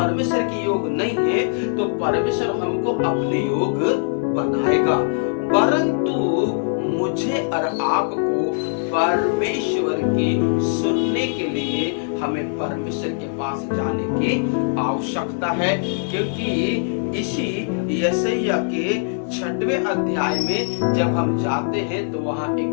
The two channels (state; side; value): silent; right; digital silence